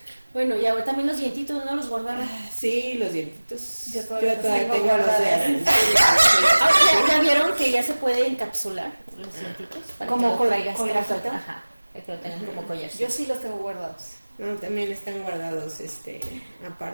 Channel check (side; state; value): both; inverted; correlation -1.00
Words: Bueno, y ahora también los dientitos, ¿no? Los guardaba. Sí, los dientitos. Yo todavía tengo guardados. ¿Ya vieron que ya se puede encapsular los dientitos? Como con la gafita. Ajá, que lo tengan como collar. Yo sí los tengo guardados. No, también están guardados,